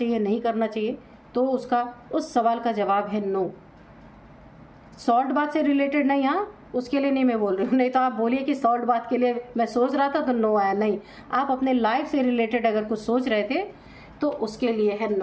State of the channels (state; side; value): identical; both; correlation 1.00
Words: नहीं करना चाहिए, तो उसका उस सवाल का जवाब है नो। सॉल्ट बात से रिलेटेड नहीं, हाँ उसके लिए नहीं मैं बोल रही हूँ, नहीं तो आप बोलिए कि सॉल्ट बात के लिए मैं सोच रहा था तो नो आया। नहीं, आप अपने लाइफ से रिलेटेड अगर कुछ सोच रहे थे तो उसके लिए है